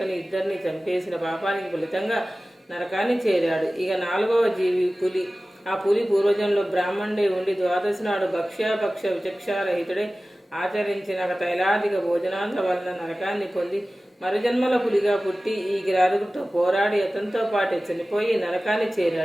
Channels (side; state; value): both; normal; correlation 0.97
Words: ఇద్దరిని చంపేసిన పాపానికి ఫలితంగా నరకాన్ని చేరాడు. ఇక 4వ జీవి పులి. ఆ పులి పూర్వజంలో బ్రాహ్మణుడే ఉండి ద్వాదశి నాడు భక్ష్యాపక్ష విచక్షారహితుడే ఆచరించిన తైలాధిక భోజనాల వలన నరకాన్ని పొంది మరుజన్మల పులిగా పుట్టి ఈ కిరాతకుడితో పోరాడి అతనితో పాటే చనిపోయి నరకాన్ని